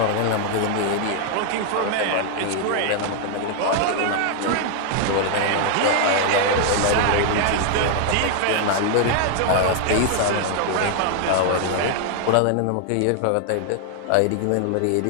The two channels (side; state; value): both; different; correlation 0.00